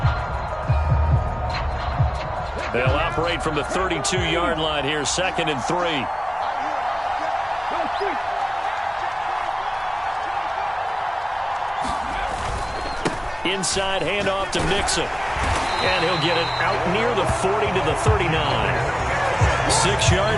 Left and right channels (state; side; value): identical; both; correlation 1.00